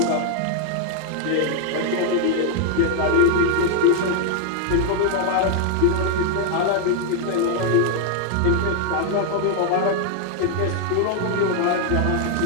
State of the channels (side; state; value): both; different; correlation 0.00